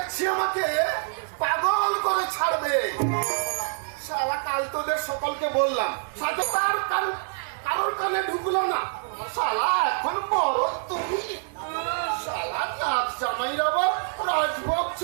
আমাকে পাগল করে ছাড়বে। শালা কাল তোদের সকলকে বললাম, সাথে তার কারোর কানে ঢুকলো না। শালা এখন বড় তুমি। শালা নাচ জামাইর আবার রাজভোগ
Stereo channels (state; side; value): silent; left; digital silence